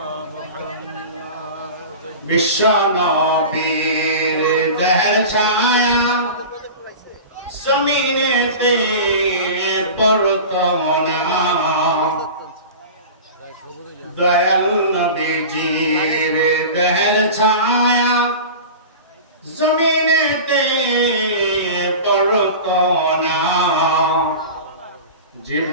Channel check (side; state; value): both; inverted; correlation -0.33